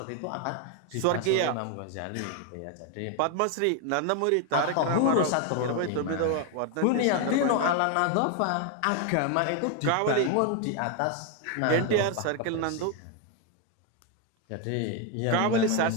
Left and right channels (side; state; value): both; different; correlation 0.01